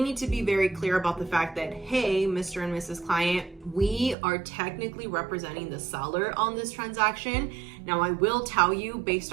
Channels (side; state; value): left; drops out; at 4.2 s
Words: need to be very clear about the fact that, hey, Mr. and Mrs. Client, we are technically representing the seller on this transaction. Now, I will tell you, based